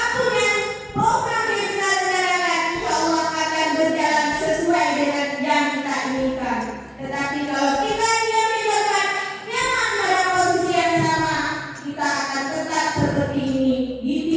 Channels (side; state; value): both; identical; correlation 1.00